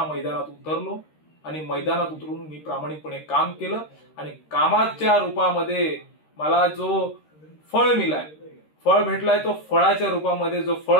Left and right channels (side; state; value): right; late; 13 ms